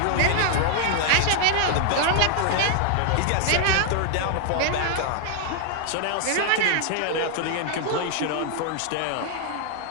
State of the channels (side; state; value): both; different; correlation 0.00